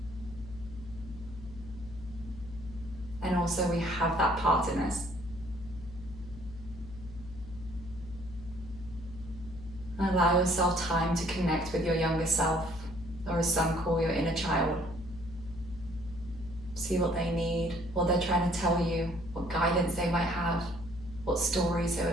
And also we have that part in us. And allow yourself time to connect with your younger self, or as some call your inner child. See what they need, what they're trying to tell you, what guidance they might have, what stories they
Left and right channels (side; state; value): left; noise; hum, 14 dB below the sound